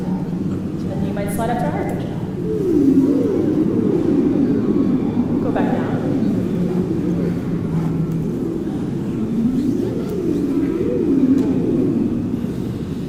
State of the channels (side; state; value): both; identical; correlation 1.00